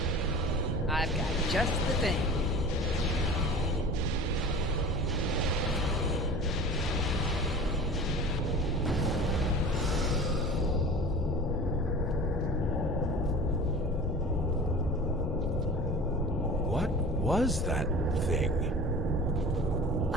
I've got just the thing. Was that thing?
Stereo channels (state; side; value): normal; both; correlation 0.37